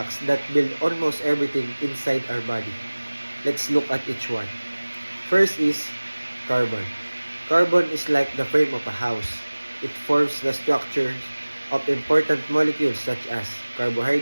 that build almost everything inside our body. Let's look at each one. First is carbon. Carbon is like the frame of a house. It forms the structure of important molecules such as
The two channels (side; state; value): both; inverted; correlation -1.00